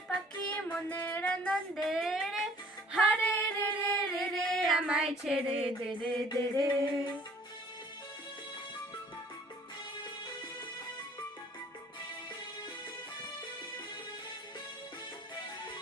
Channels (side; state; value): both; normal; correlation 0.54